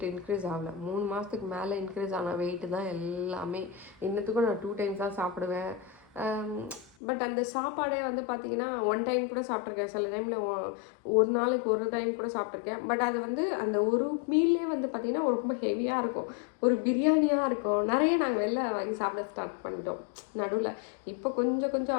இன்க்ரீஸ் ஆகலை. 3 மாதத்துக்கு மேலே இன்க்ரீஸ் ஆன வெயிட்டு தான் எல்லாமே. இன்னத்துக்கும் நான் 2 டைம்ஸ் தான் சாப்பிடுவேன். பட் அந்த சாப்பாடே வந்து பார்த்திங்கன்னா 1 டைம் கூட சாப்பிட்ருக்கேன். சில டைமில் ஒரு நாளைக்கு 1 டைம் கூட சாப்பிட்ருக்கேன். பட் அது வந்து அந்த ஒரு மீல்லே வந்து பார்த்திங்கன்னா ரொம்ப ஹெவியாக இருக்கும். ஒரு பிரியாணியாக இருக்கும். நிறைய நாங்கள் வெளில வாங்கி சாப்பிட ஸ்டார்ட் பண்ணிட்டோம் நடுவில். இப்போ கொஞ்சம்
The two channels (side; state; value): right; drops out; at 6.9 s